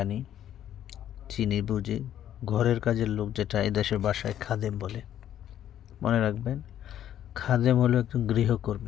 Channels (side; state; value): right; quieter; 11.0 dB